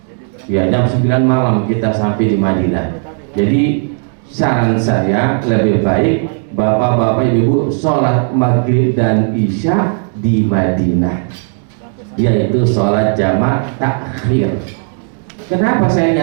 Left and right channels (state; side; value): silent; left; 57 dB below the other